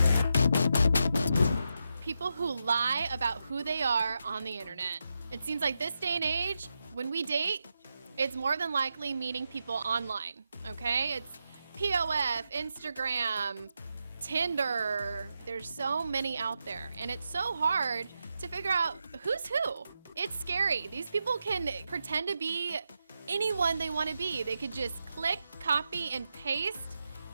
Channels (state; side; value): inverted; both; correlation -0.87